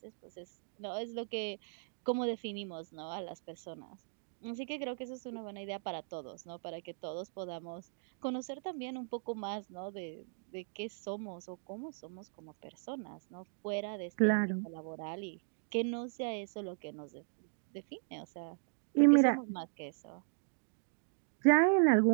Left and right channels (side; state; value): left; silent; digital silence